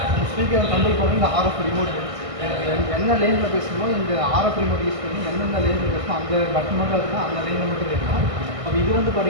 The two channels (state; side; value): late; left; 1.6 ms